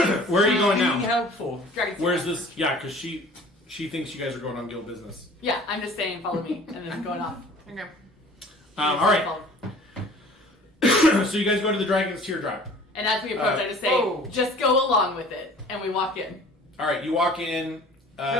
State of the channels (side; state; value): both; normal; correlation 0.48